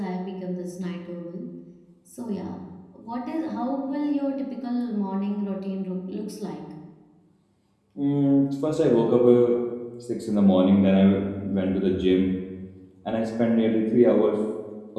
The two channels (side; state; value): both; identical; correlation 1.00